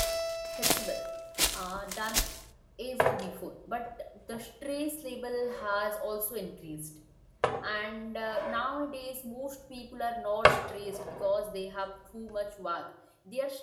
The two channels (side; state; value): both; identical; correlation 1.00